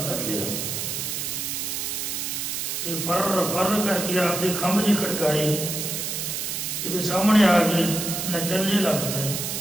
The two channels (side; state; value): right; noise; hiss, 3 dB below the sound